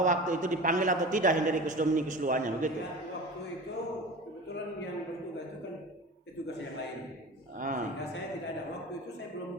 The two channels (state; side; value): normal; both; correlation 0.34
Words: waktu itu dipanggil atau tidak Hendrikus Dominikus Luannya, begitu? Ya, waktu itu kebetulan yang bertugas itu kan petugas yang lain. Sehingga saya tidak ada. Waktu itu saya belum